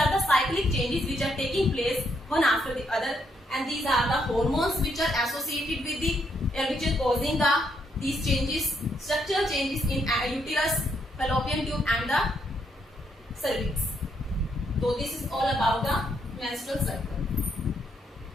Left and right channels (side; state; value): both; normal; correlation 0.75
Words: the cyclic changes which are taking place one after the other, and these are the hormones which are associated with the which are causing these changes, structural changes in uterus, fallopian tube and the cervix. So this is all about the menstrual cycle.